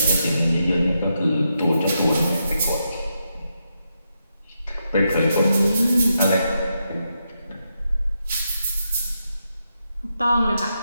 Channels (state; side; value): inverted; both; correlation -0.84